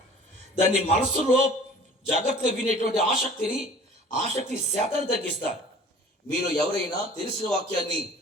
దాన్ని మనస్సులో జాగ్రత్తగా వినేటువంటి ఆసక్తి శాతాన్ని తగ్గిస్తారు. మీరు ఎవరైనా తెలిసిన వాక్యాన్ని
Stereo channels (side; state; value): both; normal; correlation 0.47